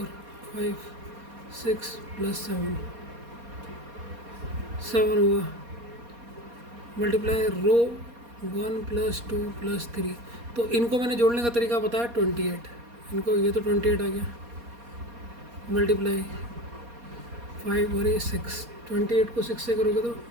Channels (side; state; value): left; late; 4.2 ms